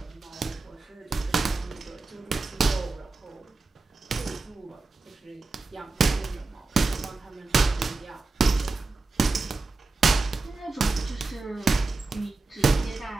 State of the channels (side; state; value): left; quieter; 3.6 dB